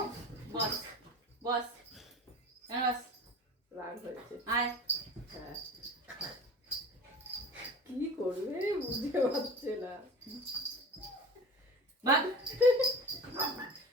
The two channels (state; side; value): normal; both; correlation 0.36